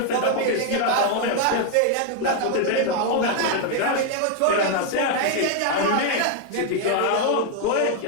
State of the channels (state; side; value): different; both; correlation 0.00